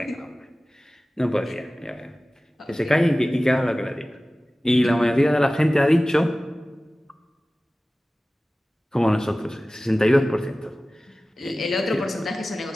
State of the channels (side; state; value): both; normal; correlation 0.97